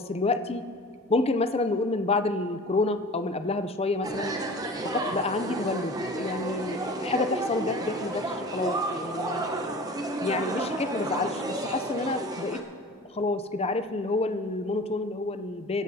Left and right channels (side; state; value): both; normal; correlation 0.40